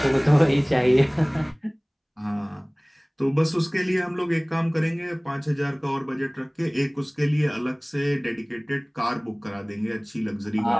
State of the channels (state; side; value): identical; both; correlation 1.00